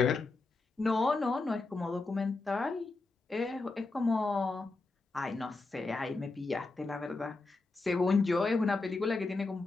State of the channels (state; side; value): quieter; right; 3.6 dB